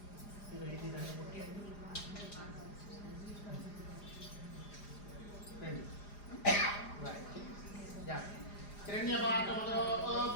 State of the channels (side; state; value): right; late; 4.9 ms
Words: ఇది దాన్ని కొట్టేయండి హిరణ్యపాఠములో